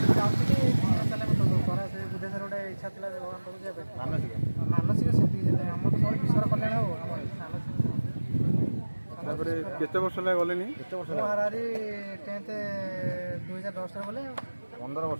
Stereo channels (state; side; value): inverted; both; correlation -1.00